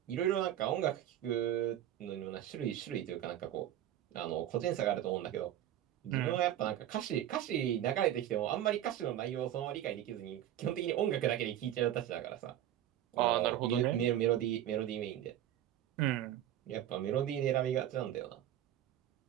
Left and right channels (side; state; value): left; quieter; 11.9 dB